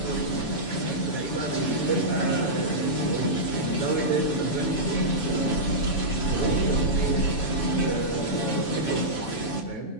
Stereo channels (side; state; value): right; late; 7.1 ms